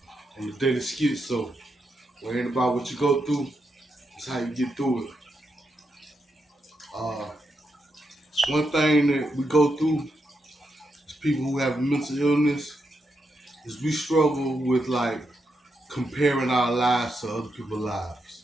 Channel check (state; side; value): normal; both; correlation 0.83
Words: and the Daily Skitzo. Where ain't about what you go through, it's how you get through it. Uh, One thing that we go through as people who have mental illness is we struggle with like comparing our lives to other people's lives.